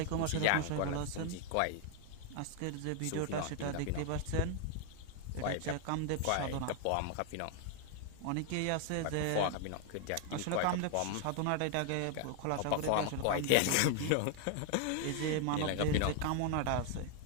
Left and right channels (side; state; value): both; different; correlation 0.00